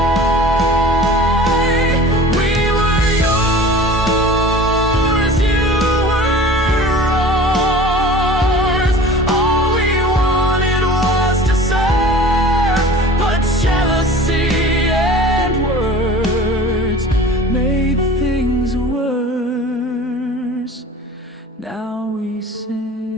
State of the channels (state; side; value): normal; both; correlation 0.41